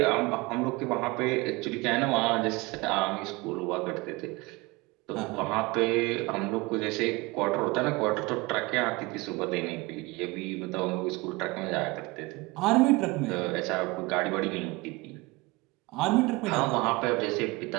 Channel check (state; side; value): quieter; left; 23.7 dB